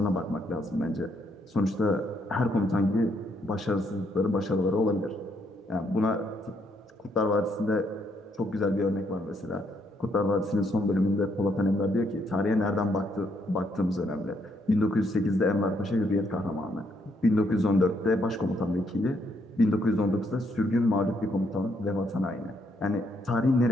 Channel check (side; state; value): both; normal; correlation 0.73